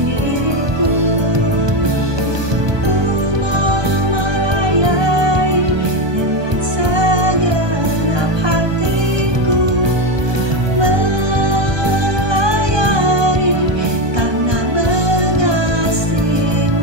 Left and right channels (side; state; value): left; late; 1.2 ms